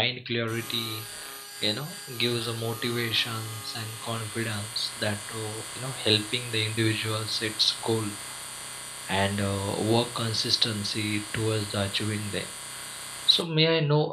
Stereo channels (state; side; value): identical; both; correlation 1.00